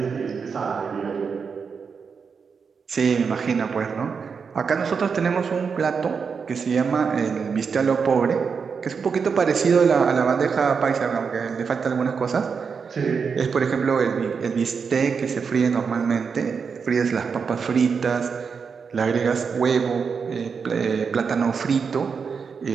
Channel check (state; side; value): quieter; left; 5.8 dB